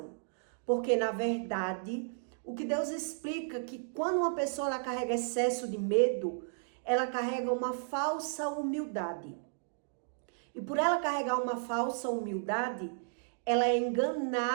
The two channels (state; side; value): silent; left; digital silence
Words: Porque, na verdade, o que Deus explica é que quando uma pessoa ela carrega excesso de medo, ela carrega uma falsa humildade. E por ela carregar uma falsa humildade, ela é